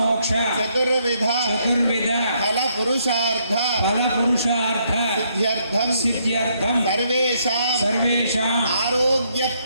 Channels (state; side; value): inverted; both; correlation -0.73